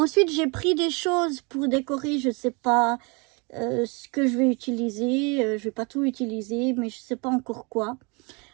j'ai pris des choses pour décorer. Je ne sais pas ce que je vais utiliser. Je ne vais pas tout utiliser, mais je ne sais pas encore quoi.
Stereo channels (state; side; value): quieter; left; 30.6 dB